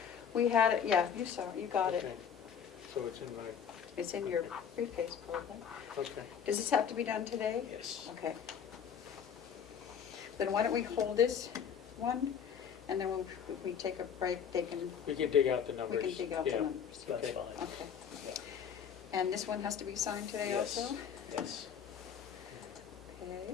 We had it, yeah, you saw it, you got it. Okay. So it's in my, It's in your briefcase, probably. okay. Does this have to be done today? Yes. Okay. Then why don't we hold this one, and then when we take a break, they can, We can dig out the we numbers. can dig out the Yeah. numbers. That's Okay. fine. Okay. Yeah. And this one has to be signed today Yes. also? Yes.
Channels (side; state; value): right; quieter; 7.8 dB